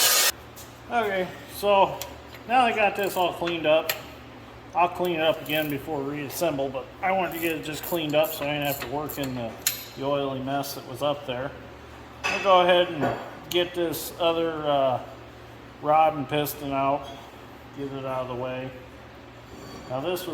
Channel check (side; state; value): both; identical; correlation 1.00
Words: So now I got this all cleaned up. I'll clean it up again before we reassemble, but I wanted to get it just cleaned up so I didn't have to work in the oily mess that was up there. I'll go ahead and get this other rod and piston out, get it out of the way. Now this